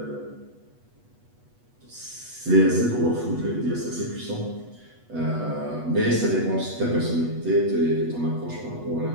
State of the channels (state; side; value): late; left; 8.2 ms